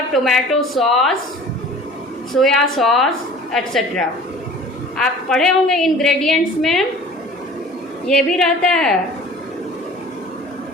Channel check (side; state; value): both; normal; correlation 0.45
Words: tomato sauce, soya sauce etc. आप पढ़े होंगे इंग्रेडिएंट्स में ये भी रहता है